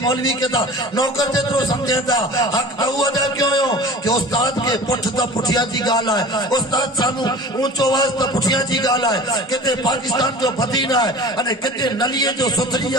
मौलवी के ता नौकर जेतरो समझेता हक तो अदा क्यों हो कि उस्ताद के पुठ तो पुठिया जी गाल है उस्ताद सानू ऊंचो आवाज तो पुठिया जी गाल है किते पाकिस्तान जो मदीना है अने किते नलिए जो सुथरी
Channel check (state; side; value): normal; both; correlation 0.40